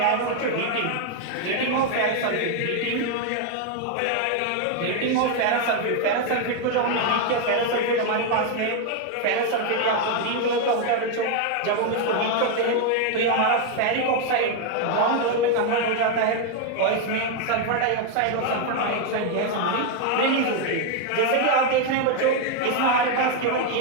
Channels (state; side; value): different; both; correlation 0.01